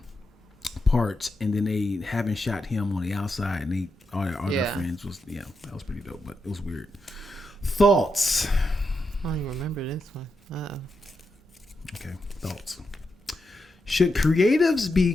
parts, and then they haven't shot him on the outside, and all their friends was that was pretty dope, but it was weird. Thoughts? I don't even remember this one. Okay, thoughts. Should creatives be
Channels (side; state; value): both; normal; correlation 0.85